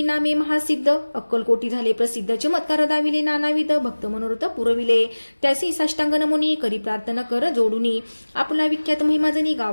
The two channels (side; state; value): both; inverted; correlation -1.00